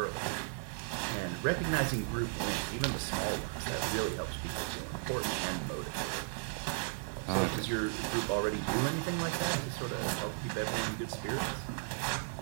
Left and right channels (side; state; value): left; silent; digital silence